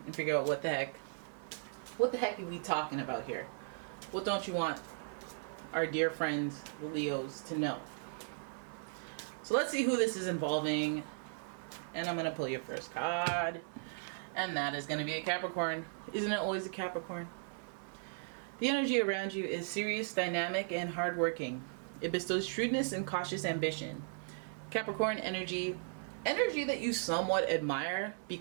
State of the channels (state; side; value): silent; left; 53 dB below the other